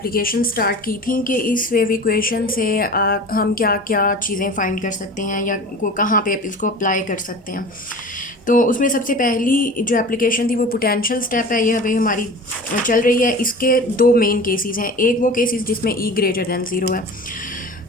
स्टार्ट की थी कि इस वेव इक्वेशन से हम क्या क्या चीज़ें फाइंड कर सकते हैं या कहाँ पे इसको अप्लाई कर सकते हैं। तो उसमें सबसे पहली जो एप्लीकेशन थी वो पोटेंशियल स्टेप है, ये अभी हमारी चल रही है। इसके दो मेन केसेस हैं। एक वो केसेस जिसमें ई ग्रेटर दैन ज़ीरो है,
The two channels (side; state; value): both; normal; correlation 0.37